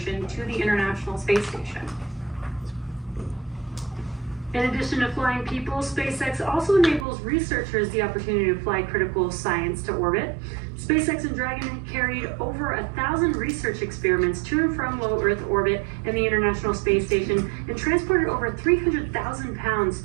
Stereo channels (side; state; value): left; drops out; at 7.1 s